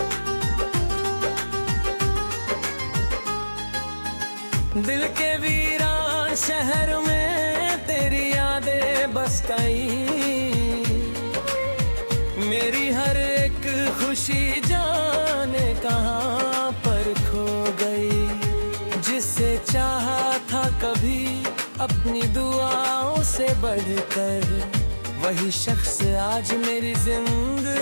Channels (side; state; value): both; inverted; correlation -1.00